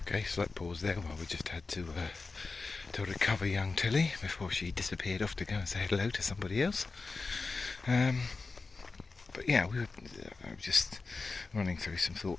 Okay, slight pause there while we just had to recover young Tilly before she disappeared off to go and say hello to somebody else. But yeah, we were just running through some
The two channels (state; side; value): quieter; right; 4.1 dB